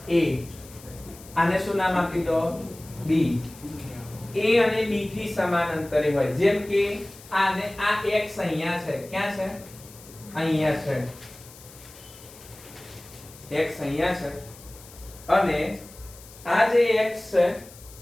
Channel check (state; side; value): noise; left; hiss, 20 dB below the sound